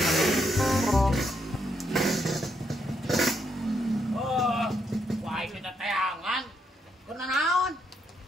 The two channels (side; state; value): both; normal; correlation 0.77